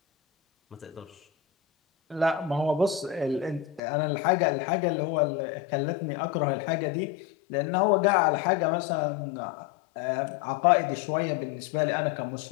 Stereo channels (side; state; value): right; drops out; at 3.8 s